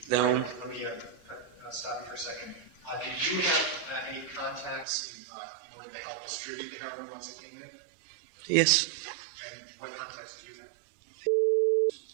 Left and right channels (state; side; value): drops out; left; at 4.9 s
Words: then. Let me stop you for a second. Did you have any contacts in order to help distribute the heroin once it came in? Yes. And what contacts did you have?